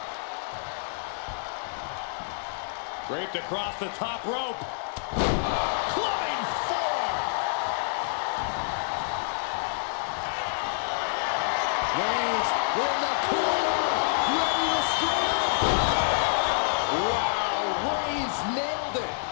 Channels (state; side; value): silent; right; 60 dB below the other